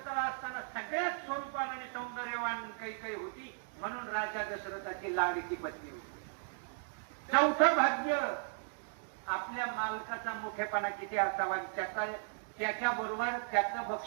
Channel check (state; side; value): silent; left; digital silence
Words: असताना सगळ्यात स्वरूपान आणि सौंदर्यवान कैकेयी होती म्हणून राजा दशरथाची लाडकी पत्नी होती. चौथं भाग्य आपल्या मालकाचा मोठेपणा किती असावा, त्याच्या बरोबर त्याचं